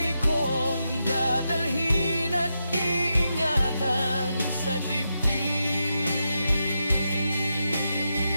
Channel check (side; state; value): both; inverted; correlation -0.86